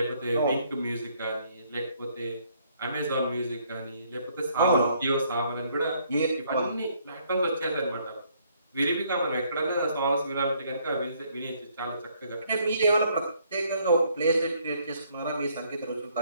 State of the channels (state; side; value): inverted; both; correlation -0.67